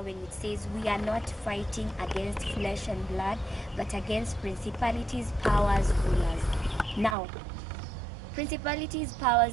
when it says we are not fighting against flesh and blood, but against principalities, powers, rulers. Now, principalities,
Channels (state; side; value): drops out; left; at 7.2 s